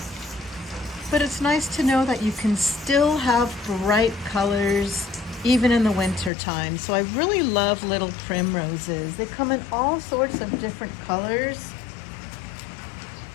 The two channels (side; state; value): right; drops out; at 6.3 s